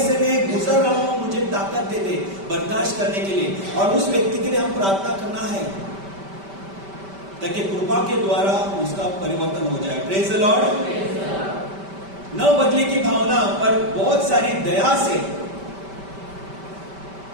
में गुजर रहा हूं, मुझे ताकत दे दे बर्दाश्त करने के लिए, और उस व्यक्ति के लिए हम प्रार्थना करना है ताकि कृपा के द्वारा उसका परिवर्तन हो जाए। Praise the Lord. न बदले की भावना पर बहुत सारी दया से,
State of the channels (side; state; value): left; late; 5.1 ms